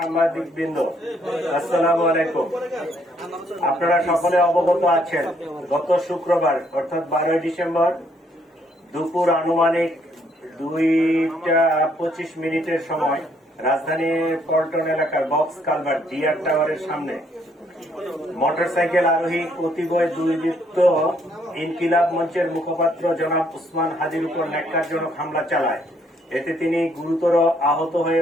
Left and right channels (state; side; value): normal; both; correlation 0.69